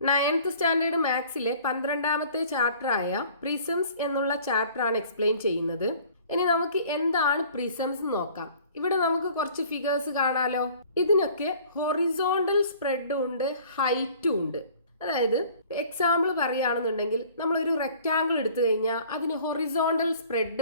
9th standard മാത്സിലെ 12ാമത്തെ ചാപ്റ്ററായ prisms എന്നുള്ള ചാപ്റ്ററാണ് explain ചെയ്യുന്നത്. ഇനി നമുക്ക് എന്താണ് പ്രിസംസ് നോക്കാം. ഇവിടെ നമുക്ക് കുറച്ച് ഫിഗേഴ്സ് കാണാലോ. ഇതിനൊക്കെ ഹൊറിസോണ്ടൽ സ്പ്രെഡും ഉണ്ട്, ഹൈറ്റും ഉണ്ട്. അതായത് എക്സാമ്പിൾ പറയുകയാണെന്നുണ്ടെങ്കിൽ നമ്മളൊരു റെക്റ്റാങ്കിൾ എടുത്തു കഴിഞ്ഞാൽ അതിന് ഹൊറിസോണ്ടൽ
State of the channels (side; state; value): both; inverted; correlation -0.51